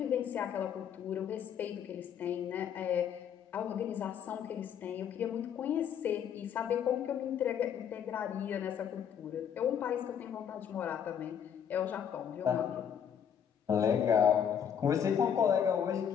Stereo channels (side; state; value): right; quieter; 8.4 dB